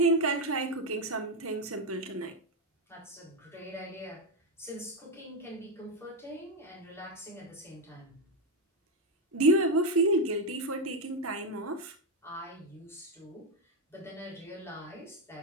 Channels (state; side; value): normal; both; correlation 0.06